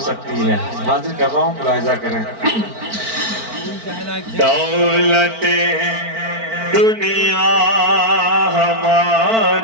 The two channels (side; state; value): left; late; 4.5 ms